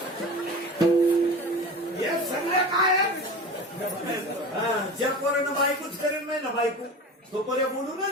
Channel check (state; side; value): normal; both; correlation 0.33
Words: हे सगळं काय ज्या पोरानं बायकोच करेल नाही ना बायको तो पर्या